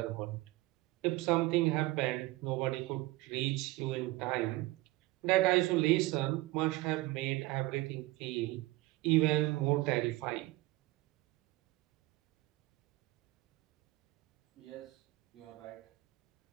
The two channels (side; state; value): left; quieter; 19.7 dB